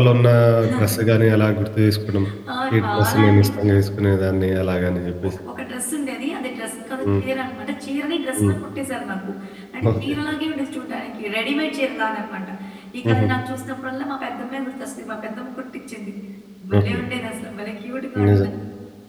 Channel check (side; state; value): both; identical; correlation 1.00